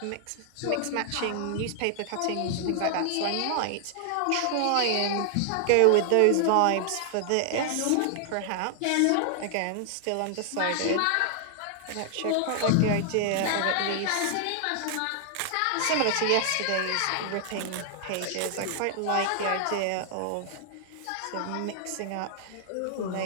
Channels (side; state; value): both; different; correlation 0.00